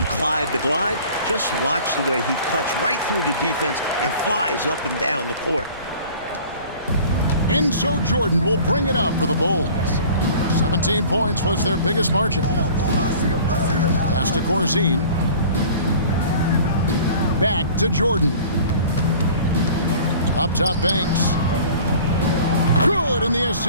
Clyde the Glide, just watch the way he cuts right through the defense and flies up and down the court. And so Jordan will bring it up for the Bulls. 17 points was their biggest margin. Pass to Corzine. Back to Jordan. Up top, Banks. Good, and the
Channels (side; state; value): both; inverted; correlation -0.46